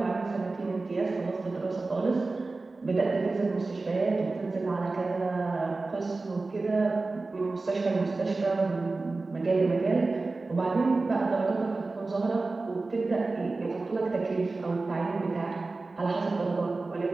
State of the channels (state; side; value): quieter; left; 3.5 dB